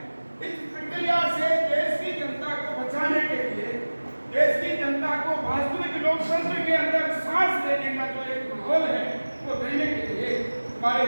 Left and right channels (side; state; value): both; inverted; correlation -1.00